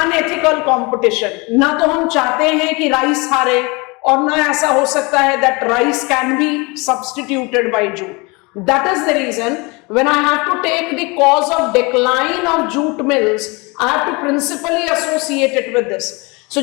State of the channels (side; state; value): right; quieter; 27.1 dB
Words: competition. ना तो हम चाहते हैं कि राइस हारे, और ना ऐसा हो सकता है that rice can be substituted by jute. That is the reason when I have to take the cause of decline of jute mills, I have to principally associate it with this. So